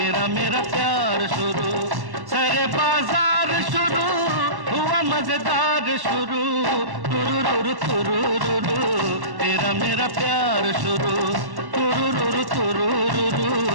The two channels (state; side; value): late; left; 1.1 ms